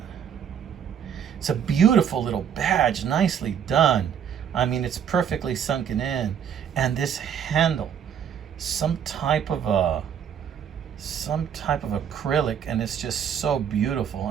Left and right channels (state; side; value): quieter; left; 8.4 dB